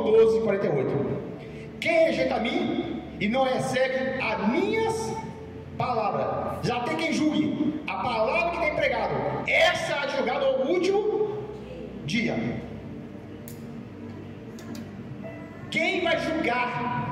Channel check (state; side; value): identical; both; correlation 1.00